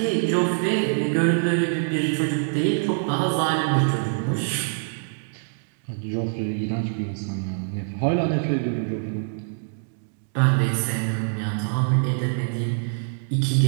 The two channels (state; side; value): silent; left; digital silence